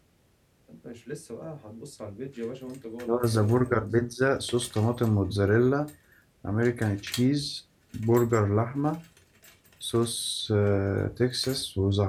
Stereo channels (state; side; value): identical; both; correlation 1.00